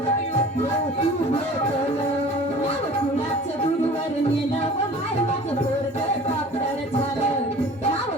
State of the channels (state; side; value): normal; both; correlation 0.44